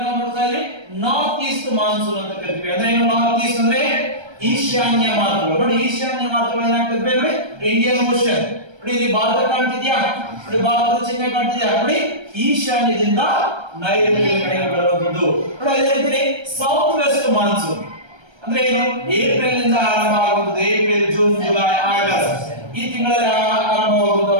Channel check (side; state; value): left; late; 1.3 ms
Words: ನಾವು ನೋಡ್ತಾ ಇದ್ವಿ ನಾರ್ತ್ ಈಸ್ಟ್ ಮಾನ್ಸೂನ್ ಅಂತ ಕರಿತೀವಿ. ಅಂದ್ರೆ ಏನು ನಾರ್ತ್ ಈಸ್ಟ್ ಅಂದ್ರೆ? ಈಶಾನ್ಯ ಮಾರುತಗಳು. ನೋಡಿ, ಈಶಾನ್ಯ ಮಾರುತಗಳು ಏನಾಗ್ತದೆ ಅಂದ್ರೆ ಇಂಡಿಯನ್ ಓಷನ್. ನೋಡಿ, ಇಲ್ಲಿ ಭಾರತ ಕಾಣ್ತಿದ್ಯಾ? ನೋಡಿ, ಭಾರತದ ಚಿಹ್ನೆ ಕಾಣ್ತಿದ್ಯಾ? ನೋಡಿ, ಈಶಾನ್ಯದಿಂದ ನೈಋತ್ಯ ಕಡೆಗೆ ಬರುವಂತದ್ದು. ನೋಡಿ, ಅದೇ ರೀತಿ ಸೌತ್ ವೆಸ್ಟ್ ಮಾನ್ಸೂನ್ ಅಂದ್ರೆ ಏನು? ಏಪ್ರಿಲ್ ನಿಂದ ಆರಂಭ ಆಗುತ್ತದೆ. ಏಪ್ರಿಲ್, ಜೂನ್, ಜುಲೈ, ಆಗಸ್ಟ್ ಈ ತಿಂಗಳಲ್ಲಿ ಆರಂಭವಾಗುವಂತ